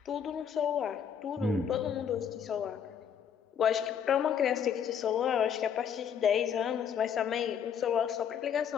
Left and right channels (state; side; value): quieter; right; 8.0 dB